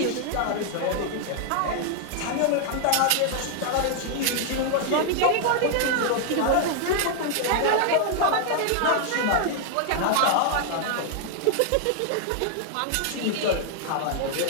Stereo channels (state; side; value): different; both; correlation 0.00